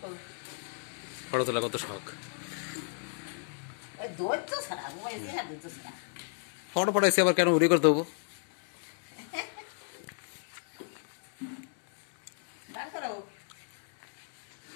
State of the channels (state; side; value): silent; right; 55 dB below the other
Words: ফটো তোলা কত শখ ফটো পড়াইছি আবার কেন ভিডিও করে দেবো